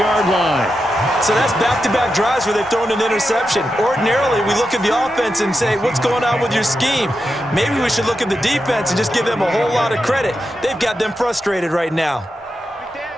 line. So that's back-to-back drives where they've thrown an interception. Ordinarily, we look at the offense and say, what's going on with your scheme? Maybe we should look at the defense and just give them a whole lot of credit. They've got them frustrated right now.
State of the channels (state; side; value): normal; both; correlation 0.88